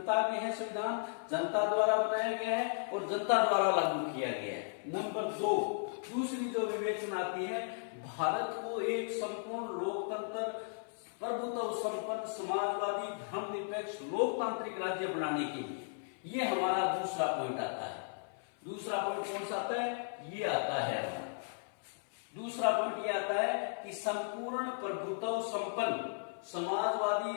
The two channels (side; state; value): right; silent; 54 dB below the other